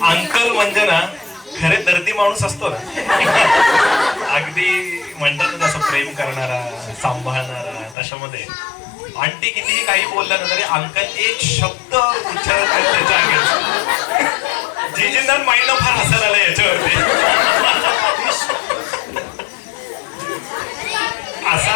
अंकल म्हणजे ना खरे दर्दी माणूस असतो ना, अगदी म्हणतात ना तसं प्रेम करणारा, सांभाळणारा, तशामध्ये आंटी कितीही काही बोललं ना तरी अंकल एक शब्द उच्चारत नाही त्याच्या अंगात. जीजींना माइंड फार हसायला आलं याच्यावरती.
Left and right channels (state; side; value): drops out; right; at 8.0 s